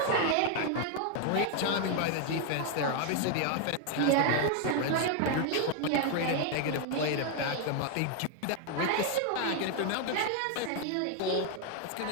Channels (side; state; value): both; different; correlation 0.00